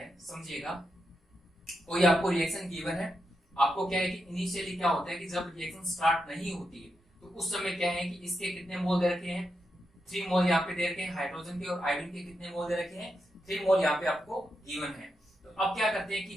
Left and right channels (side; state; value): both; normal; correlation 0.85